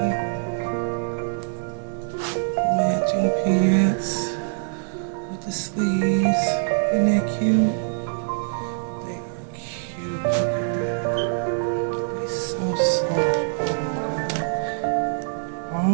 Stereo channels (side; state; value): left; silent; digital silence